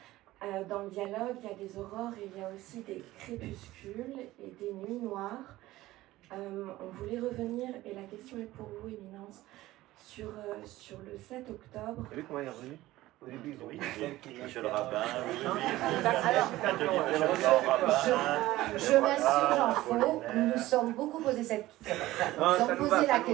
Dans le dialogue, il y a des aurores et il y a aussi des crépuscules et des nuits noires. On voulait revenir, et la question est pour vous, Éminence, sur le 7 octobre. Vous avez vu comment il est revenu? Au début, oui, monsieur le rabbin, je m'assure, Jean-Faux, nous nous sommes beaucoup posé cette question. Nous avons posé la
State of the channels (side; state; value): left; quieter; 16.8 dB